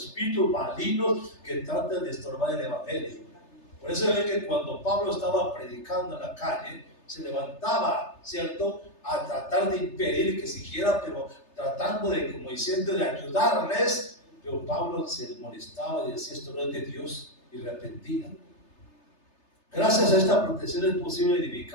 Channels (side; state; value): right; late; 3.3 ms